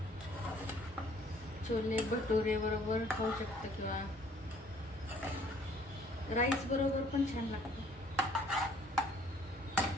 छोले भटुरे बरोबर खाऊ शकतो किंवा राईस बरोबर पण छान लागतं.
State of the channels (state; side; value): normal; both; correlation 0.59